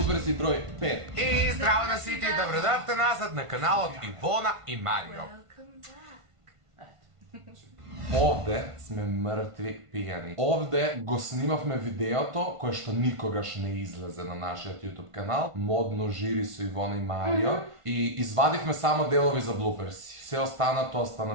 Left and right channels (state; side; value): late; left; 1.5 ms